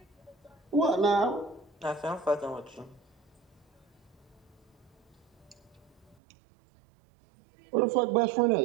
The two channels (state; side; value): drops out; left; at 6.2 s